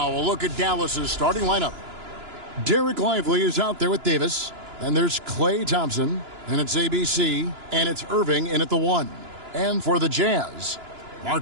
a look at Dallas's starting lineup. Derek Lively is out there with Davis. Then there's Klay Thompson. And it's ABC. And it's Irving in at the 1. And for the Jazz,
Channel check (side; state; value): left; late; 2.9 ms